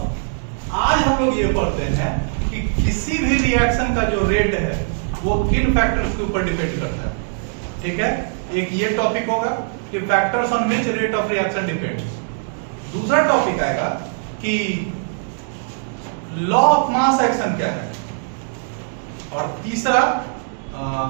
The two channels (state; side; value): silent; left; digital silence